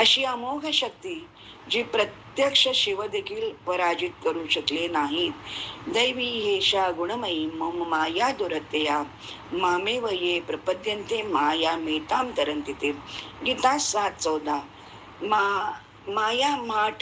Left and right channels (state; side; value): identical; both; correlation 1.00